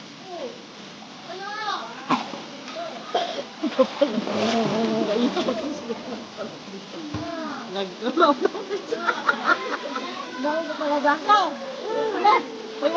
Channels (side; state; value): both; identical; correlation 1.00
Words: Nag-galaw. Dahil na talaga ako. Uy,